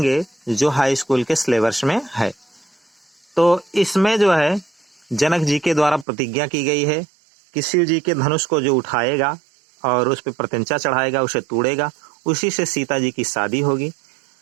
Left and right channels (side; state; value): left; drops out; at 6.1 s